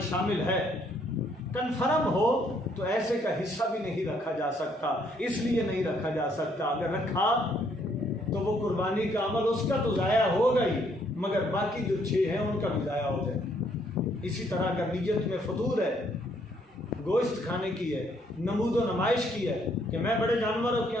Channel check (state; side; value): normal; both; correlation 0.68